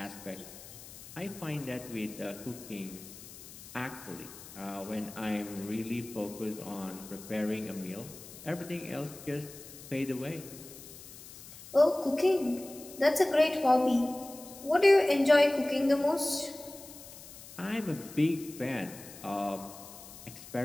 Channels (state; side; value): noise; left; hiss, 16 dB below the sound